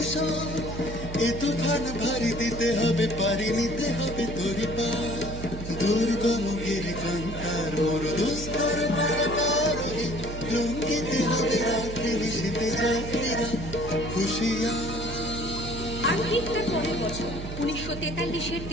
এ তুফান ভারী দিতে হবে, পারি নিতে হবে তোরি পা। দুর্গম গিরিকান্তার দুস্তর পারাবারোহী, লঙ্ঘিতে হবে রাত্রি নিশীতে যাত্রীরা হুঁশিয়ার। আর ঠিক তার পরের বছর 1943-এর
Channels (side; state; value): right; noise; hum, 8 dB below the sound